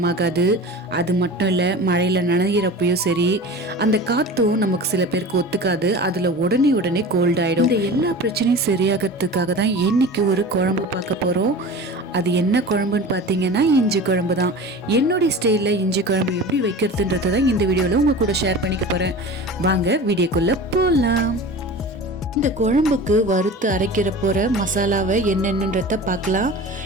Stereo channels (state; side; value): normal; both; correlation 0.35